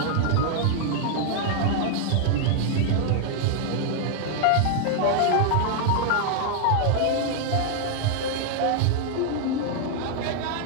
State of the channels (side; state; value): both; different; correlation 0.00